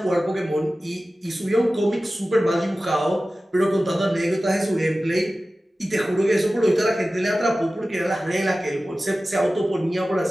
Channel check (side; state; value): both; normal; correlation 0.96